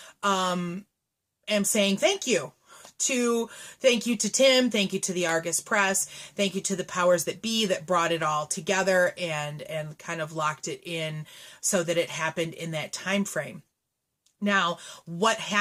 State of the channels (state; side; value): identical; both; correlation 1.00